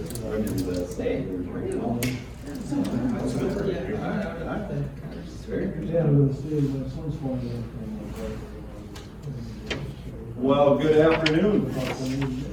Well, good afternoon.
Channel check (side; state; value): both; identical; correlation 1.00